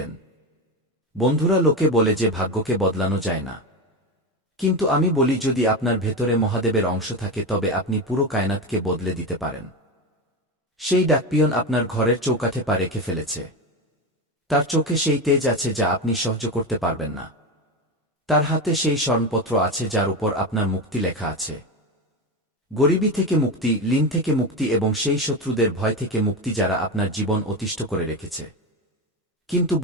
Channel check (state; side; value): normal; both; correlation 0.18